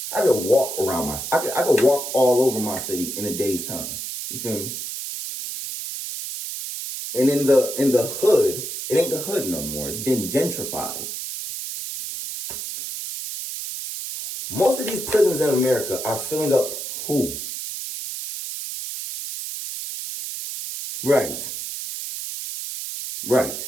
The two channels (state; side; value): noise; right; hiss, 6 dB below the sound